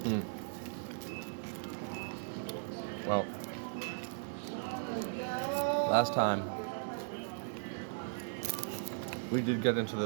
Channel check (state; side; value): silent; left; digital silence